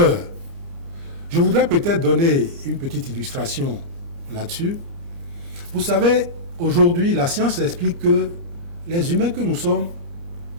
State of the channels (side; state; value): left; late; 29 ms